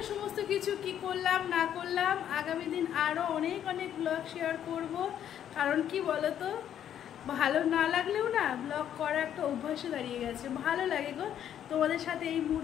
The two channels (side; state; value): right; quieter; 10.0 dB